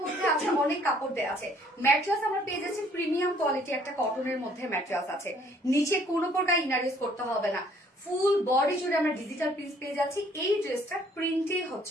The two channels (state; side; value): normal; both; correlation 0.61